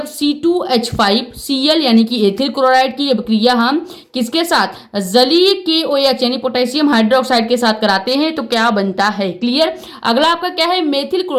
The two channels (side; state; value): both; identical; correlation 1.00